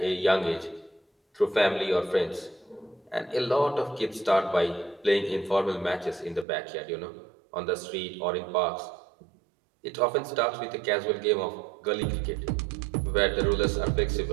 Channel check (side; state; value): left; drops out; at 6.5 s